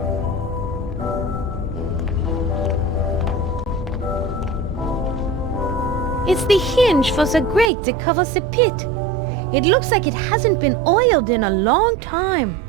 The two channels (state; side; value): drops out; left; at 7.7 s